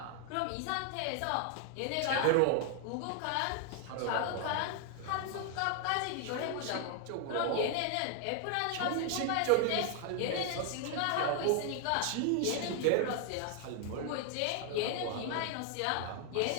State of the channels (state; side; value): different; both; correlation 0.00